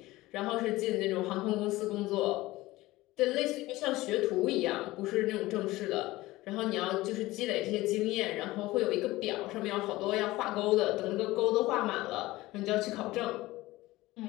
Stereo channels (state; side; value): quieter; right; 18.5 dB